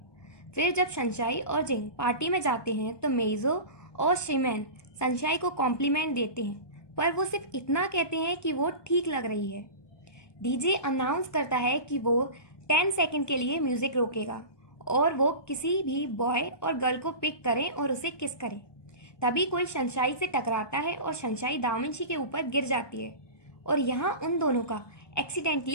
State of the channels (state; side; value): late; right; 1.2 ms